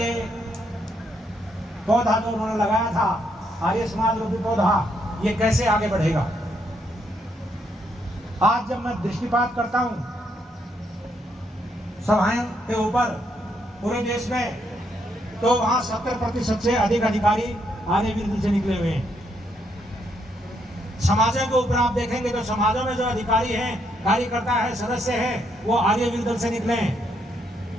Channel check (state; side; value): normal; both; correlation 0.75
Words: पौधा जो उन्होंने लगाया था, आर्य समाज रूपी पौधा, ये कैसे आगे बढ़ेगा। आज जब मैं दृष्टिपात करता हूं सभाओं के ऊपर पूरे देश में, तो वहां 70% से अधिक अधिकारी आर्यवीर दल से निकले हुए हैं। समाजों के ऊपर आप देखेंगे तो समाजों में जो अधिकारी हैं, कार्यकर्ता है, सदस्य हैं, वो आर्यवीर दल से निकले हैं।